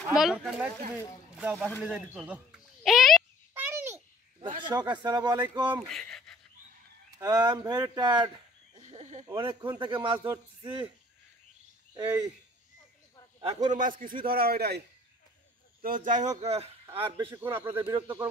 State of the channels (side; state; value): both; normal; correlation 0.54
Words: বলো। তুমি যাও বাসা নিয়ে যাই দিতে দাও। এই দর্শক আসসালামু আলাইকুম। আই এম ভেরি টায়ার্ড, অনেকক্ষণ থেকে মাছ ধরছি। এই এখনো মাছ কিছুই ধরা হয় নাই। তো যাই হোক, আর বেশিক্ষণ আপনাদের বিরক্ত